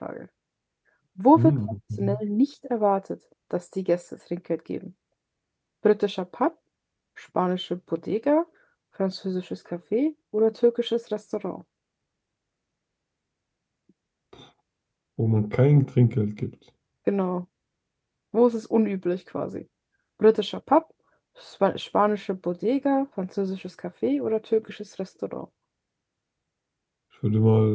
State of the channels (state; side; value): identical; both; correlation 1.00